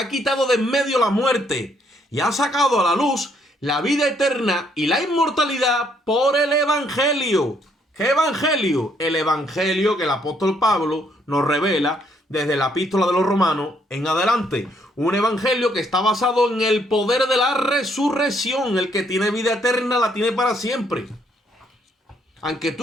quitado de en medio la muerte y ha sacado a la luz la vida eterna y la inmortalidad por el Evangelio. ¿Qué Evangelio? El Evangelio que el apóstol Pablo nos revela desde la epístola de los Romanos en adelante. Un evangelio que está basado en el poder de la resurrección. El que tiene vida eterna la tiene para siempre. Aunque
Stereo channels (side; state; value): both; normal; correlation 0.70